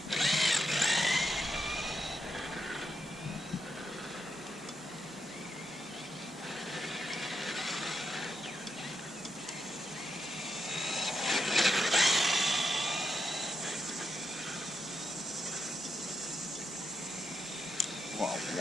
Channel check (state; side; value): noise; right; hum, 29 dB below the sound